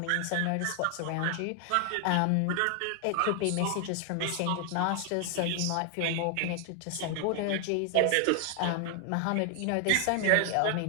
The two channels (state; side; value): different; both; correlation 0.00